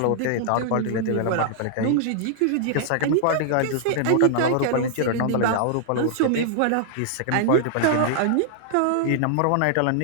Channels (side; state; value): both; different; correlation -0.01